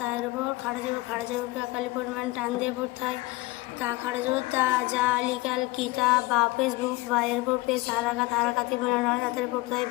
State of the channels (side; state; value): right; quieter; 20.8 dB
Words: উপর খাড়া জবরকে একালি পরিমাণ টান দিয়ে পড়তে হয়। তা খাড়া জবর তা, জালি কাল কি, তা বা ফেসবুক, বা এর উপর পেশ হারাকাতি বিনা তাদের পড়তে হয়।